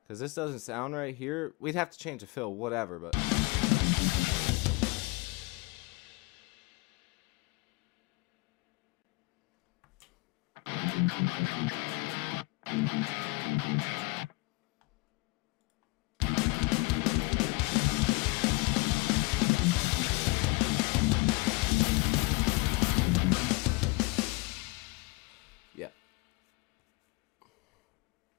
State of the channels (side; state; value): right; quieter; 24.9 dB